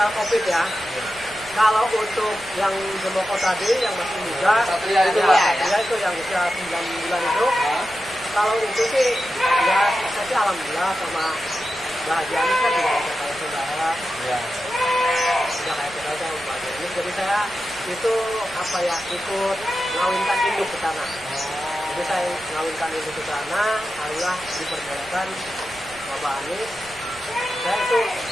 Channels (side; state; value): right; noise; rumble, 22 dB below the sound